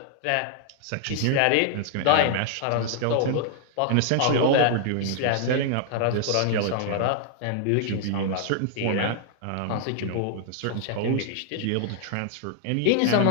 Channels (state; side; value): different; both; correlation 0.00